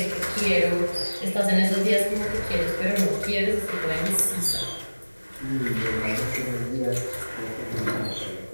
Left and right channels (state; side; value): inverted; both; correlation -1.00